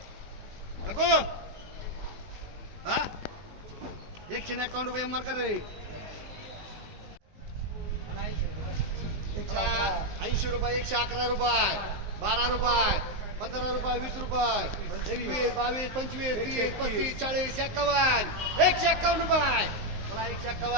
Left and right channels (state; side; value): late; left; 19 ms